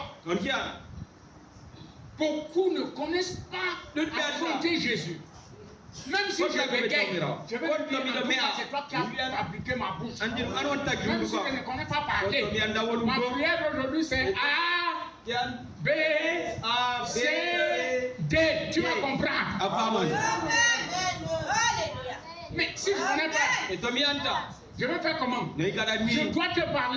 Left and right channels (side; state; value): both; identical; correlation 1.00